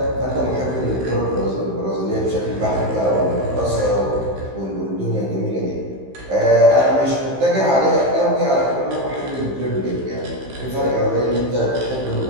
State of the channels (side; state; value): left; late; 15 ms